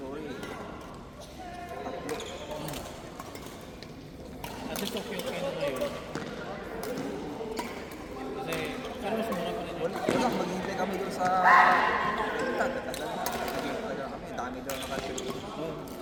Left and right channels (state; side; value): identical; both; correlation 1.00